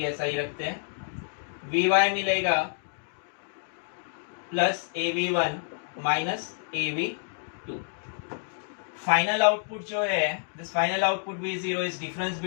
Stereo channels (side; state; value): right; silent; digital silence